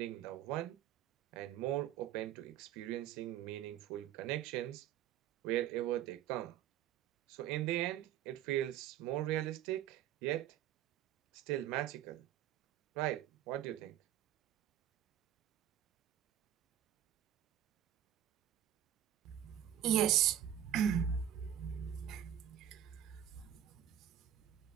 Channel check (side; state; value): left; quieter; 11.1 dB